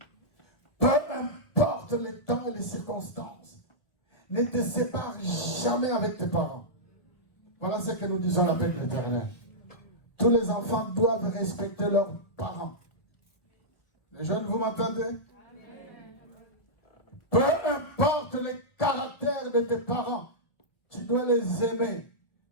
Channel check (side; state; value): right; late; 1.1 ms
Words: Peu importe les temps et les circonstances. Ne te sépare jamais avec tes parents. Voilà ce que nous disons à l'appel de l'Éternel. Tous les enfants doivent respecter leurs parents. Les jeunes, vous m'entendez? Peu importe le caractère de tes parents, tu dois les aimer,